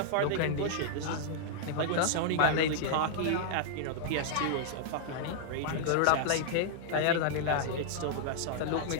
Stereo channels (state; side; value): different; both; correlation -0.01